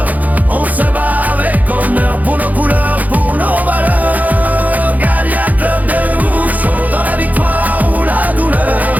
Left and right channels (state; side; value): late; left; 0.079 ms